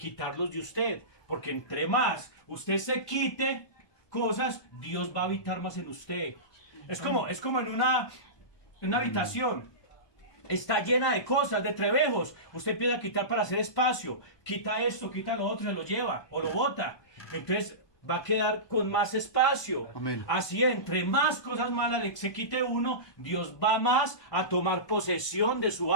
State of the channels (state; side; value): late; right; 1.2 ms